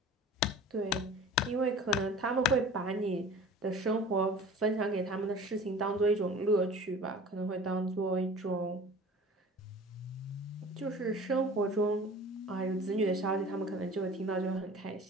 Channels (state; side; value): normal; both; correlation 0.42